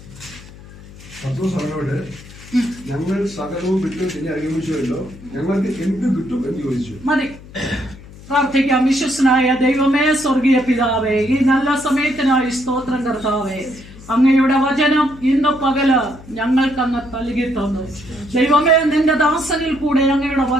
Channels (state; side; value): noise; left; hum, 19 dB below the sound